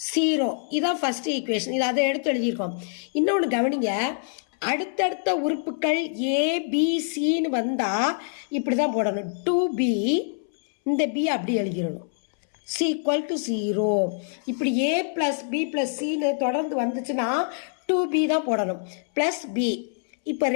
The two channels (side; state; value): right; silent; 62 dB below the other